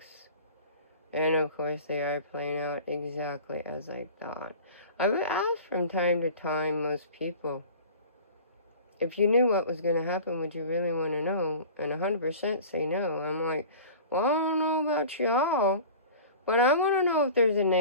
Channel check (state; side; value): inverted; both; correlation -0.40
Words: And of course they are playing out exactly as I thought. I would ask from time to time most people, if you knew what was going to happen, would you really want to know? And 100% say no. I'm like, well, I don't know about y'all, but I want to know if there's a